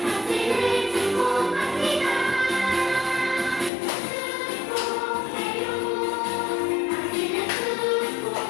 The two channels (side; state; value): right; drops out; at 3.7 s